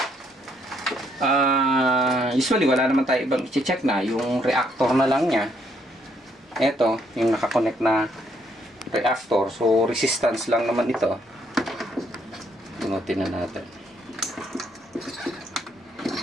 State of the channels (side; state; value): both; normal; correlation 0.71